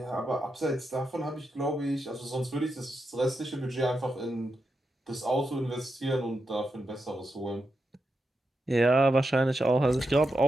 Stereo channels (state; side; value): normal; both; correlation 0.86